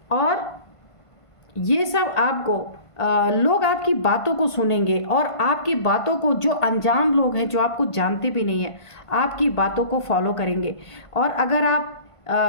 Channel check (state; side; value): late; right; 1.5 ms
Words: और ये सब आपको लोग आपकी बातों को सुनेंगे, और आपकी बातों को जो अनजान लोग हैं, जो आपको जानते भी नहीं हैं, आपकी बातों को फॉलो करेंगे। और अगर आप